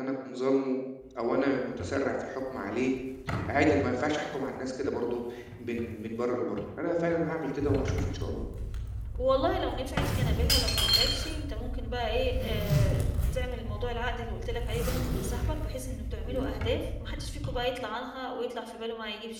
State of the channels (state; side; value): identical; both; correlation 1.00